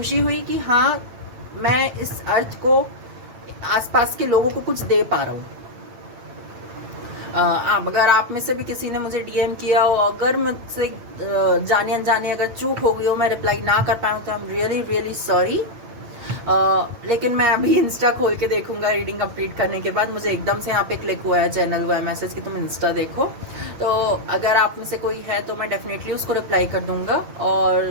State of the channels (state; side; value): late; left; 9.0 ms